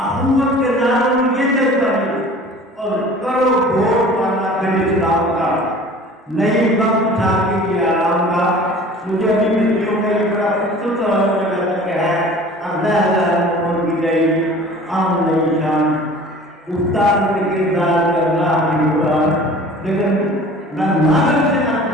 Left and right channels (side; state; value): both; normal; correlation 0.44